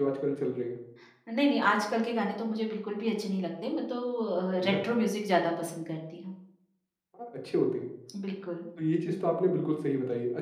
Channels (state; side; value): identical; both; correlation 1.00